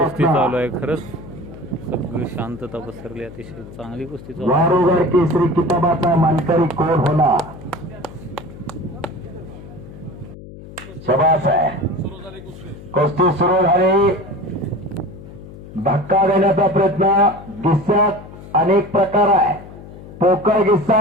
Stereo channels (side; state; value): left; noise; hum, 16 dB below the sound